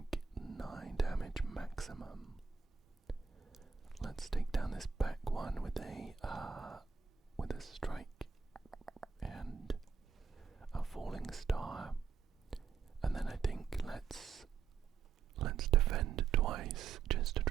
9 damage maximum. Let's take down this back one with a strike and a falling star, and then I think let's defend twice just to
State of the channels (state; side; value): quieter; left; 5.9 dB